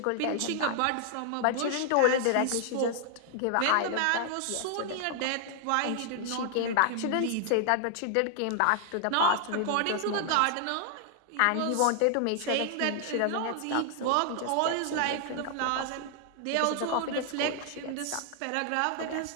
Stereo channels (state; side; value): different; both; correlation 0.00